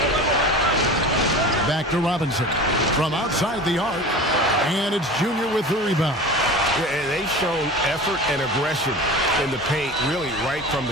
Back to Robinson from outside the arc, and it's Junior with the rebound. Yeah, and they've shown effort and aggression in the paint, really right from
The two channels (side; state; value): both; normal; correlation 0.35